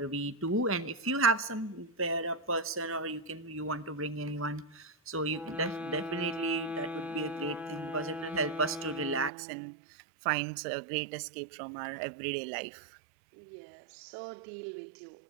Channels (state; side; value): drops out; left; at 9.3 s